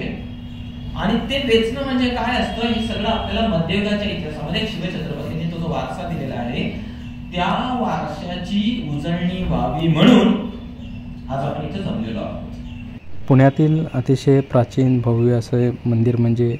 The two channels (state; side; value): identical; both; correlation 1.00